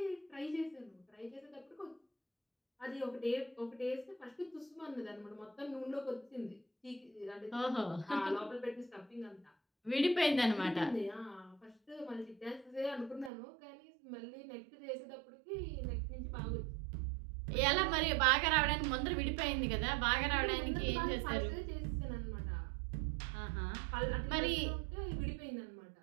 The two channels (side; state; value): left; drops out; at 13.3 s